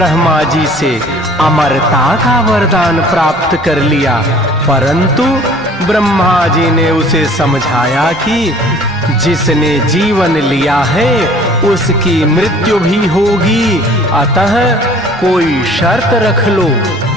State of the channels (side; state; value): both; normal; correlation 0.51